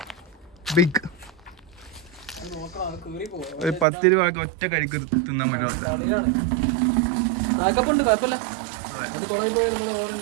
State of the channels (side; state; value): left; drops out; at 3.9 s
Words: ബിഗ് ഒരു 10 രൂപ ഒറ്റ കഴിക്ക് തിന്നാൻ പറ്റുമല്ല.